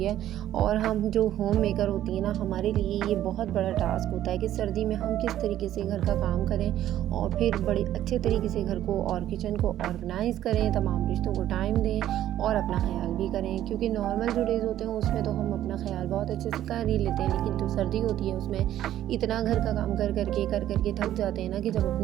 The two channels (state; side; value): quieter; left; 12.4 dB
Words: है। और हम जो होम मेकर होती हैं ना, हमारे लिए ये बहुत बड़ा टास्क होता है कि सर्दी में हम किस तरीके से घर का काम करें और फिर बड़े अच्छे तरीके से घर को और किचन को ऑर्गेनाइज़ करें, तमाम रिश्तों को टाइम दें और अपना ख्याल भी करें। क्योंकि नॉर्मल जो डेज़ होते हैं उसमें तो हम अपना ख्याल बहुत अच्छे से कर ही लेते हैं, लेकिन जो सर्दी होती है उसमें इतना घर का काम कर करके थक जाते हैं ना कि जब